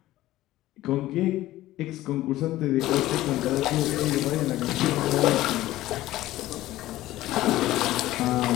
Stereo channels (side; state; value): right; quieter; 15.8 dB